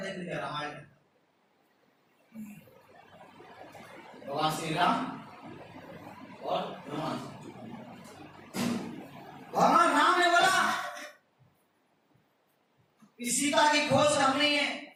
देख लीजिए रामायण, भगवान श्री राम और हनुमान। भगवान राम ने बोला कि सीता की खोज करनी है,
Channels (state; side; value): identical; both; correlation 1.00